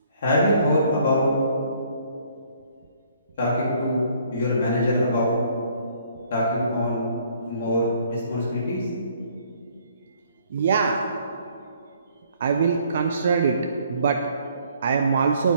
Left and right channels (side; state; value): both; inverted; correlation -0.63